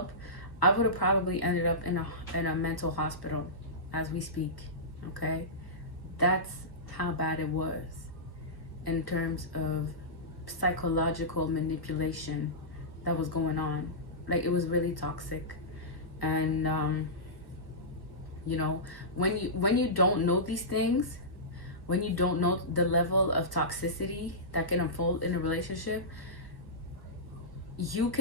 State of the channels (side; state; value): right; late; 1.3 ms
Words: I would have probably ended up in a mental hospital as we speak. Okay, that's how bad it was in terms of psychological manipulation that was going on. Like, it was really toxic. And you know, when you don't know these things, when you don't know the level of toxicity that can unfold in a relationship, you